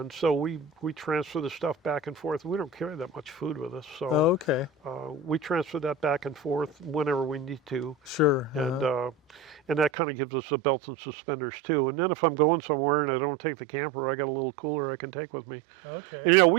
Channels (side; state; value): left; drops out; at 9.9 s